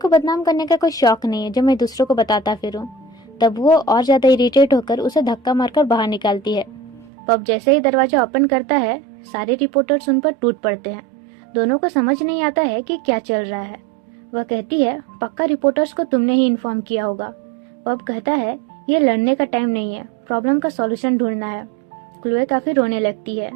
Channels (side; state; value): left; drops out; at 7.1 s